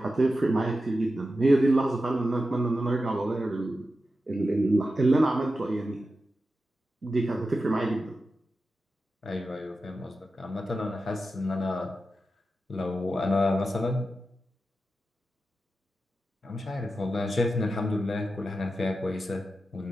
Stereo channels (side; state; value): both; normal; correlation 0.91